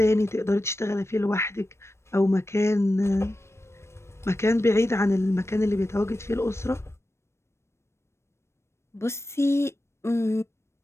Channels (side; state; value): right; late; 0.13 ms